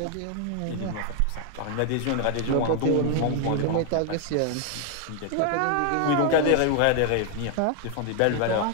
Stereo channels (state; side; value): different; both; correlation 0.00